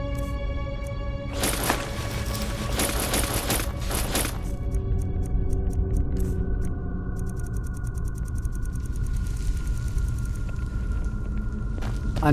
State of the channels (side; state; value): both; identical; correlation 1.00